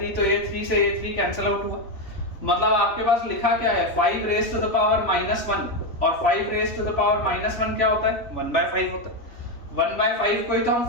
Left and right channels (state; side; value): late; right; 3.6 ms